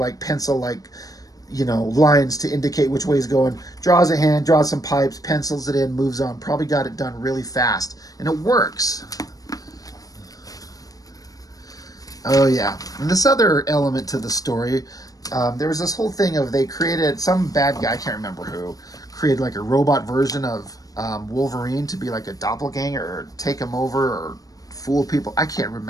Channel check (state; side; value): late; right; 0.18 ms